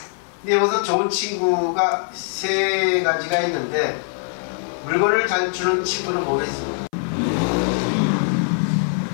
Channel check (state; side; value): silent; right; 59 dB below the other